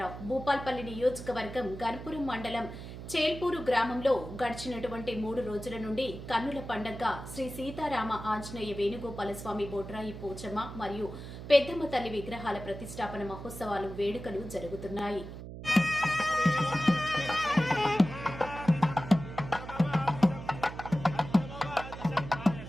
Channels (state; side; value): noise; right; hum, 11 dB below the sound